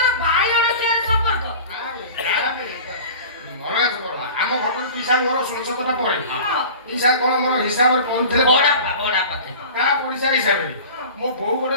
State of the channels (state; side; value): inverted; both; correlation -0.39